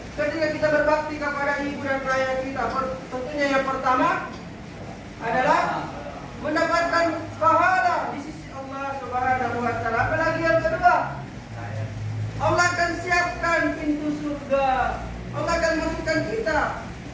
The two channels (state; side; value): identical; both; correlation 1.00